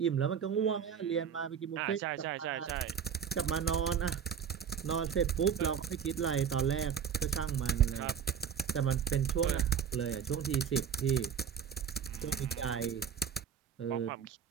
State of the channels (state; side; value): quieter; left; 7.7 dB